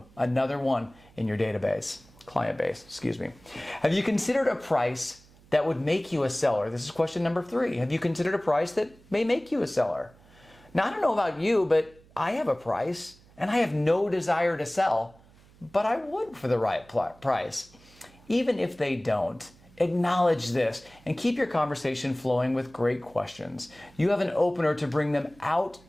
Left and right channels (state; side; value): noise; right; hum, 27 dB below the sound